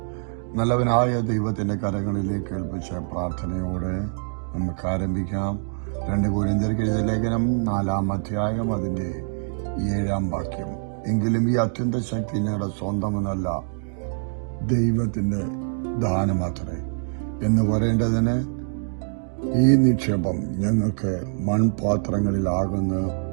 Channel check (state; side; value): silent; left; digital silence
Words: നല്ലവനായ ദൈവത്തിന്റെ കരങ്ങളിലേക്ക് ഏൽപ്പിച്ച പ്രാർത്ഥനയോടെ നമുക്ക് ആരംഭിക്കാം. 2 കൊരിന്ത്യർക്ക് എഴുതിയ ലേഖനം 4-ാം അധ്യായം അതിന്റെ 7-ാം വാക്യം. എങ്കിലും ഈ അത്യന്ത ശക്തി ഞങ്ങളുടെ സ്വന്തമെന്നല്ല, ദൈവത്തിന്റെ ദാനമാത്രേ എന്ന് പറയേണ്ടതിന് ഈ നിക്ഷേപം ഞങ്ങൾക്ക് മൺപാത്രങ്ങളിലാകുന്നു